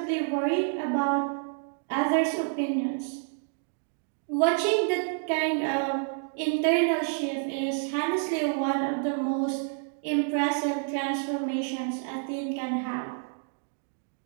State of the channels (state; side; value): silent; left; 58 dB below the other